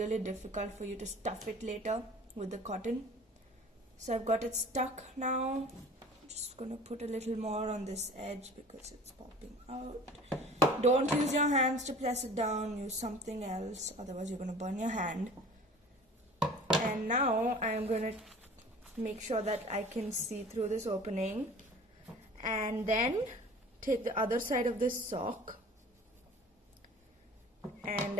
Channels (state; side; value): normal; both; correlation 0.44